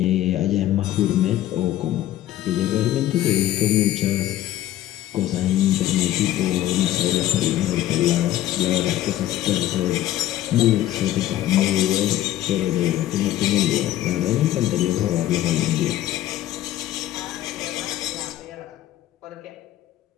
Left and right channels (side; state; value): right; quieter; 13.4 dB